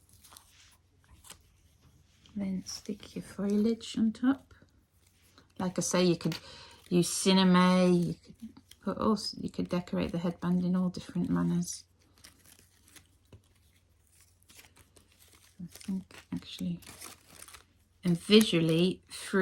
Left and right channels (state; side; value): identical; both; correlation 1.00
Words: Then stick your foliage on top. Like I say, you could use cinnamon, you could decorate the headband in all different manners. I think actually, and visually,